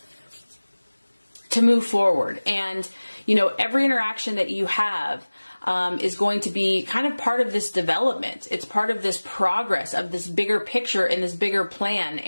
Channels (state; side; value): inverted; both; correlation -1.00